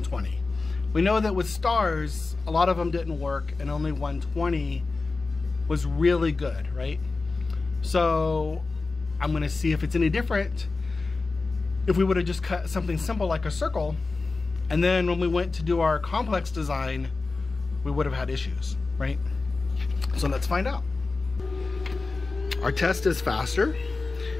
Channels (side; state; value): right; quieter; 3.8 dB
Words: We know that with stars, a lot of them didn't work, and only 120 was really good, right? So I'm gonna see if it's any different if we would have just cut something simple like a circle, and then when we went to do our complex design, we would have had issues, right? So let's find out. Our test is faster